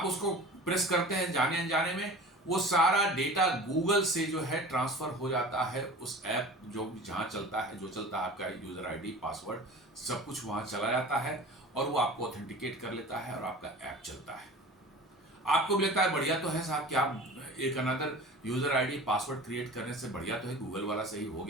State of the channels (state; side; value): normal; both; correlation 0.38